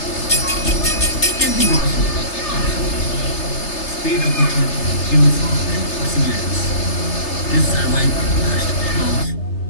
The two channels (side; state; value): right; late; 3.3 ms